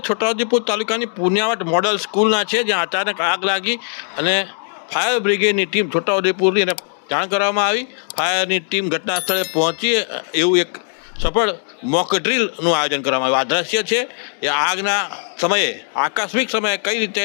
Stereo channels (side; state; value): right; silent; digital silence